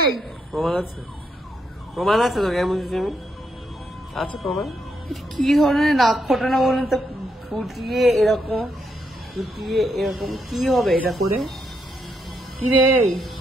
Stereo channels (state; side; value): normal; both; correlation 0.78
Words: প্রমাণ আছে? প্রমাণ আছে তো? কেমন বুঝেছি আমি? আছে প্রমাণ? কি ধরনের নাক ফোটানো বলুন তো? ফুটিয়ে এরকম, ফুটিয়ে এরকম কি হবে এটা করে? কি রে